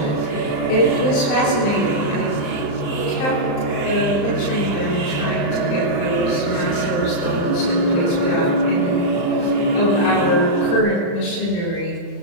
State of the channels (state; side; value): late; right; 35 ms